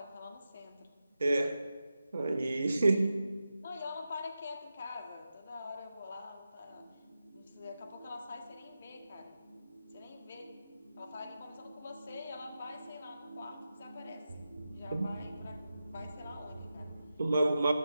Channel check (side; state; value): both; inverted; correlation -0.91